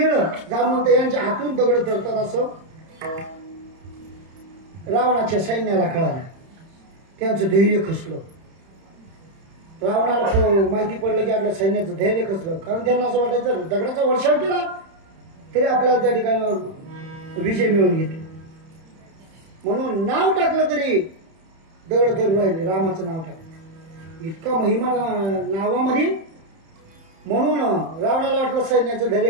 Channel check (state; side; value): late; left; 31 ms